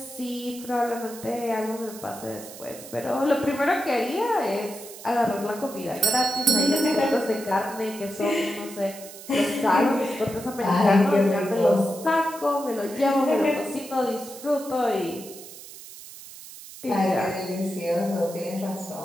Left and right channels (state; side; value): noise; right; hiss, 15 dB below the sound